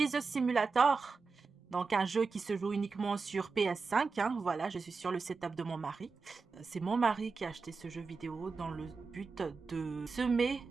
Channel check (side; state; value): left; quieter; 4.5 dB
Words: Simulator. Donc, un jeu qui se joue uniquement sur PS5. Voilà, je suis sur le setup de mon mari. C'est mon mari qui a acheté ce jeu vidéo dans le but de semer